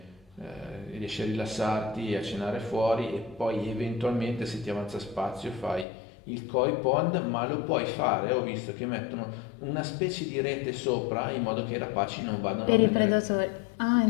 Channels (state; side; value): drops out; right; at 5.9 s